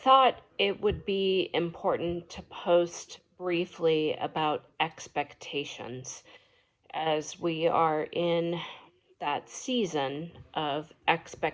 it would be important to post briefly about expectations as we are in that season of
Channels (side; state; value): both; identical; correlation 1.00